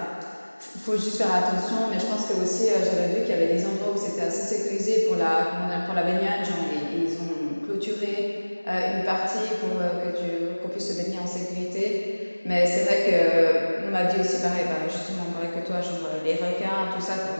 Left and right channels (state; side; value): inverted; both; correlation -1.00